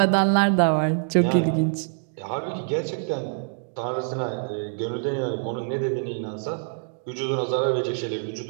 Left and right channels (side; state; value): left; silent; digital silence